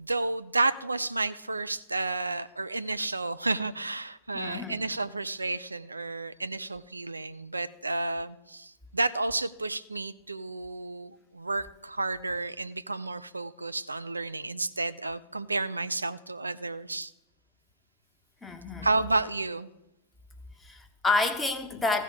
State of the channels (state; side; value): inverted; both; correlation -0.62